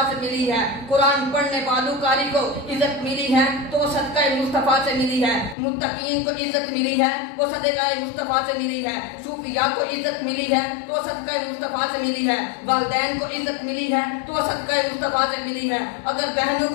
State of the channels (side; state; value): right; drops out; at 5.6 s